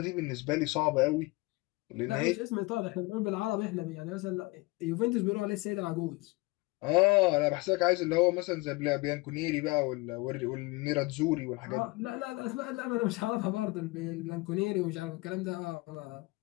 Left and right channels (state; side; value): quieter; right; 23.8 dB